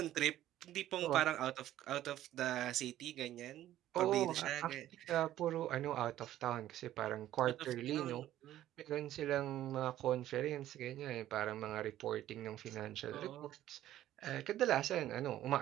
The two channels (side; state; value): left; quieter; 13.1 dB